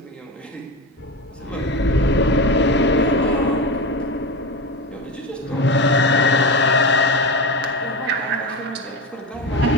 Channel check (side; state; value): both; normal; correlation 0.20